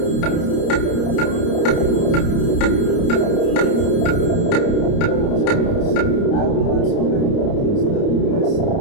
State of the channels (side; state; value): right; late; 30 ms